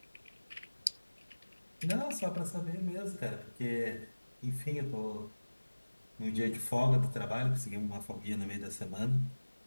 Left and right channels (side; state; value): both; inverted; correlation -1.00